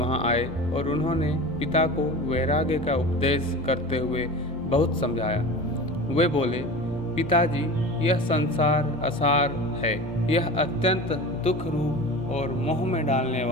आए और उन्होंने पिता को वैराग्य का उपदेश करते हुए बहुत समझाया। वे बोले, पिताजी, यह संसार असार है। यह अत्यंत दुख रूप और मोह में डालने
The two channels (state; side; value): normal; both; correlation 0.33